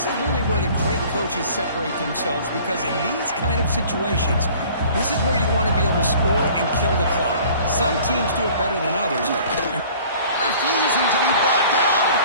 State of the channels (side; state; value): both; inverted; correlation -0.49